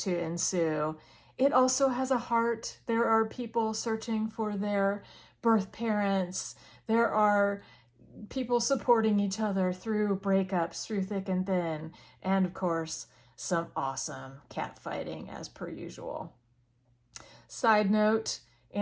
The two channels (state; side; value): identical; both; correlation 1.00